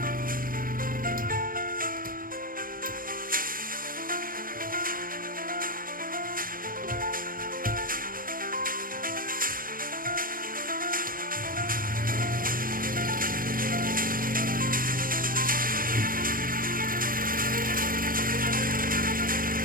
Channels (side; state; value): left; late; 0.41 ms